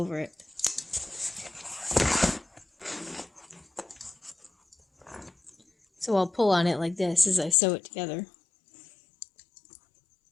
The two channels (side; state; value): right; drops out; at 7.6 s